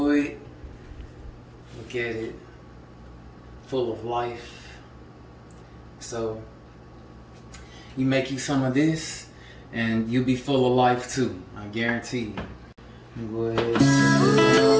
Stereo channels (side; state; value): both; identical; correlation 1.00